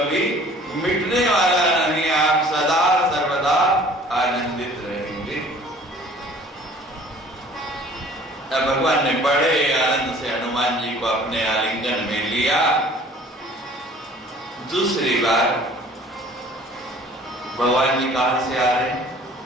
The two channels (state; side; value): normal; both; correlation 0.51